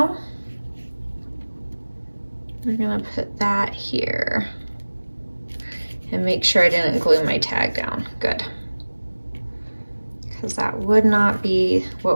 we're gonna put that here and make sure I didn't glue my tag down. Good, because that would not be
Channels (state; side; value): inverted; both; correlation -1.00